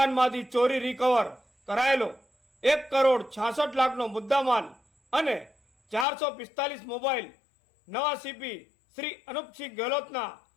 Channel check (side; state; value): right; drops out; at 6.1 s